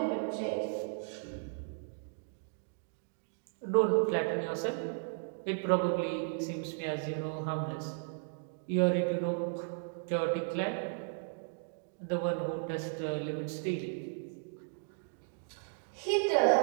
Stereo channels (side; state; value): left; silent; digital silence